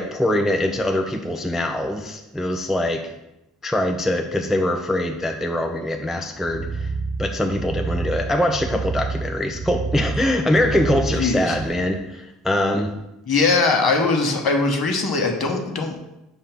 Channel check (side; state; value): both; normal; correlation 0.65